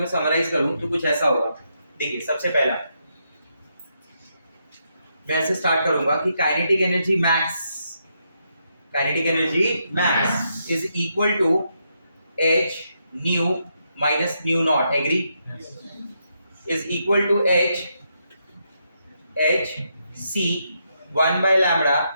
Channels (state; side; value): inverted; both; correlation -0.80